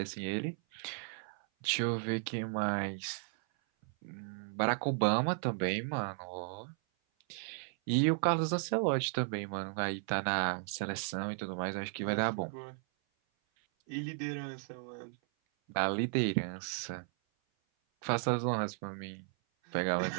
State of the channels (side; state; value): left; silent; 54 dB below the other